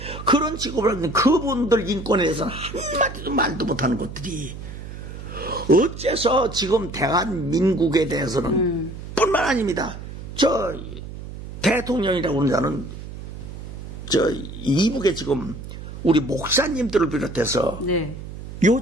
그런 취급을 하는 그분들 인권에 대해서는 한마디도 말도 못하는 것들이 어째서 지금 대한민국에 대해서는 뿐만 아닙니다. 대통령이라고 하는 자는 이북에 지금 우리 목사님들을 비롯해서 네.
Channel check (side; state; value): right; noise; hum, 11 dB below the sound